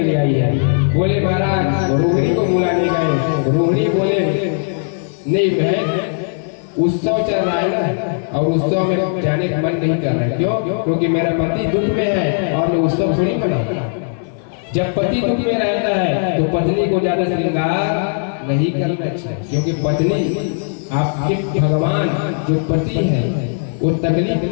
लिए आई है। बोले महाराज रोहिणी को बुलाने गए। रोहिणी बोले नहीं बहन उत्सव चल रहा है ना और उत्सव में जाने का मन नहीं कर रहा है। क्यों? क्योंकि मेरा पति दुख में है और मैं उत्सव थोड़ी मनाऊं। जब पति दुख में रहता है तो पत्नी को ज्यादा श्रृंगार नहीं करना चाहिए, क्योंकि पत्नी आपके भगवान जो पति है वो तकलीफ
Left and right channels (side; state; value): right; silent; digital silence